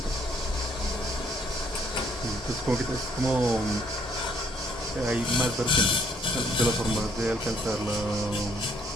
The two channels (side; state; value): both; normal; correlation 0.65